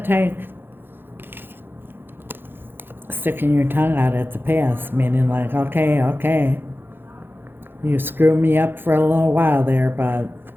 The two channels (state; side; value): late; left; 0.10 ms